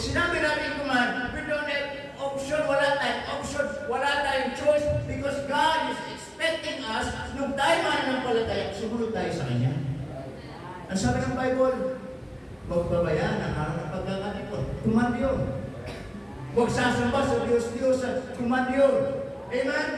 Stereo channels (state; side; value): identical; both; correlation 1.00